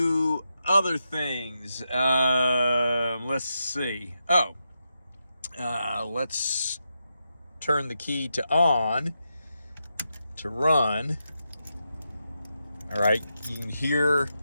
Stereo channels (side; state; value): both; inverted; correlation -0.86